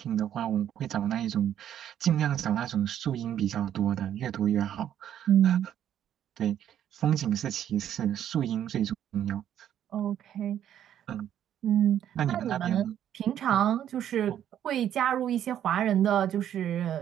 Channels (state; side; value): quieter; left; 10.4 dB